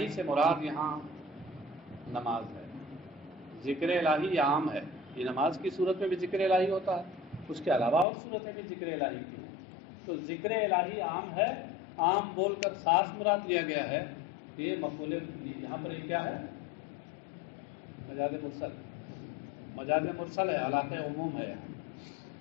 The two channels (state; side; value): drops out; right; at 8.1 s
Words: سے مراد یہاں نماز ہے. ذکر الہی عام ہے، یہ نماز کی صورت میں بھی ذکر الہی ہوتا ہے، اس کے علاوہ اور صورتیں بھی ذکر الہی کی ہیں. تو ذکر الہی عام ہے، عام بول کر خاص مراد لیا گیا ہے. یہ مفعول یہاں پر یہ کیا ہے؟ مجاز مرسل. مجاز مرسل ہے، علاقہ عموم ہے. یہاں